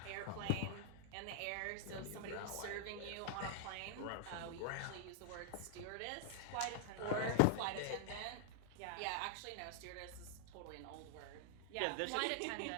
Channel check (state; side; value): different; both; correlation 0.00